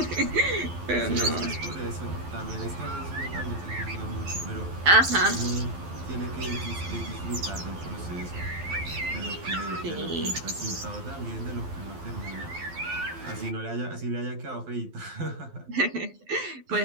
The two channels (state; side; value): late; left; 12 ms